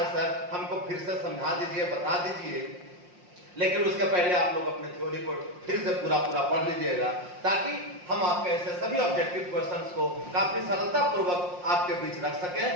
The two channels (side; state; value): left; late; 5.6 ms